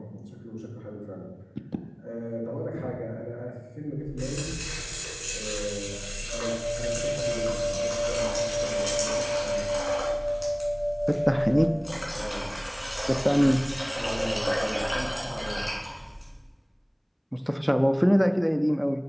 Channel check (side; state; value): both; identical; correlation 1.00